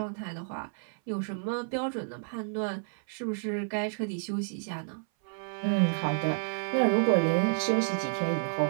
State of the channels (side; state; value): left; silent; 57 dB below the other